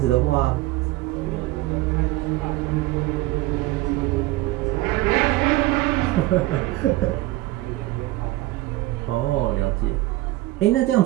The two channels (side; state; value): left; quieter; 18.1 dB